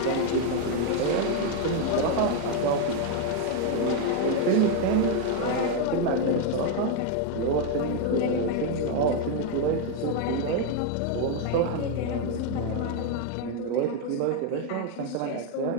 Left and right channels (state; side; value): different; both; correlation 0.01